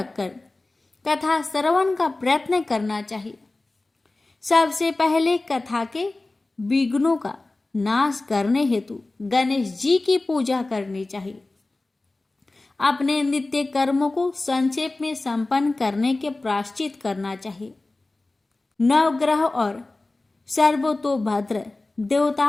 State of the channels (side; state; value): right; quieter; 3.1 dB